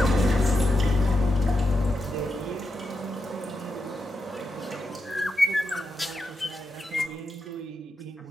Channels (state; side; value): normal; both; correlation 0.87